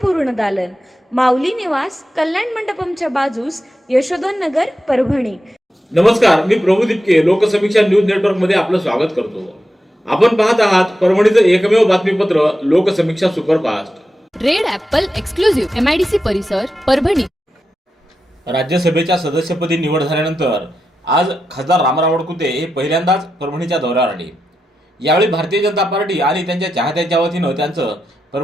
दालन, माऊली निवास, कल्याण मंडपमच्या बाजूस, यशोधन नगर, परभणी। नमस्कार, मी प्रभू दिपके लोकसमीक्षा न्यूज नेटवर्क मध्ये आपलं स्वागत करतो। आपण पाहत आहात परभणीचं एकमेव बातमीपत्र Loksamiksha superfast. Red Apple exclusive MIDC परिसर परभणी। राज्यसभेच्या सदस्यपदी निवड झाल्यानंतर आज खासदार रामराव वडकुते हे पहिल्यांदाच परभणीच्या दौऱ्यावर आले। यावेळी भारतीय जनता पार्टी आणि त्यांच्या चाहत्यांच्या वतीनं त्यांचं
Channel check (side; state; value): both; normal; correlation 0.88